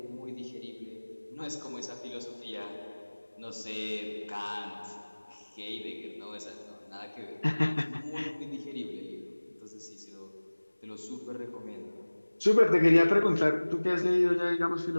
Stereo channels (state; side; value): inverted; both; correlation -1.00